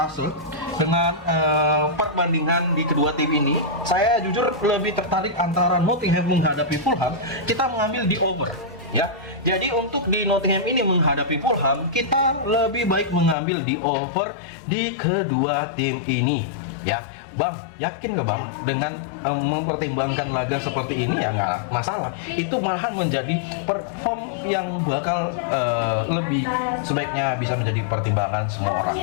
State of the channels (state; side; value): drops out; right; at 13.4 s